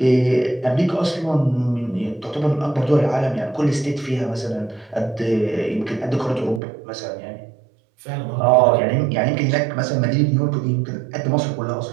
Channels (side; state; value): left; drops out; at 6.6 s